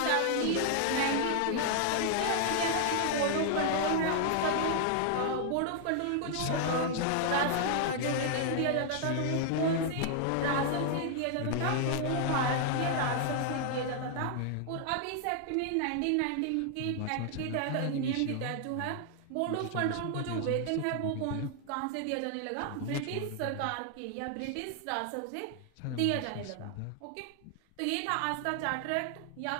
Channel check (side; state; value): both; different; correlation 0.00